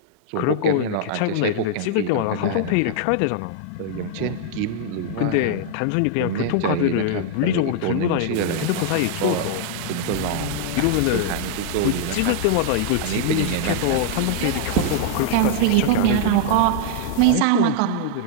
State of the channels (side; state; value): both; different; correlation -0.01